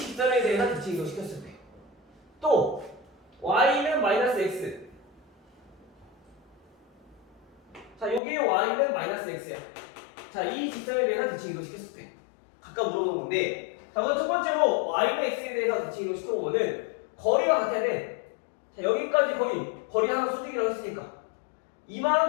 대해서 대칭 이동 시켰을 때. 또 y는 마이너스 x. 자, 요게 y는 마이너스 x야. 자, 이 직선에 대해서 대칭 이동 시켰을 때. 각각 물어보는 건데, 자, 그럼 첫 번째로 y는 x에 대해서 대칭 이동 시켜보면은 거리가 같아야 돼. 자, 여기까지 거리 하나 수직이라고 했으니까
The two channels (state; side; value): drops out; right; at 8.2 s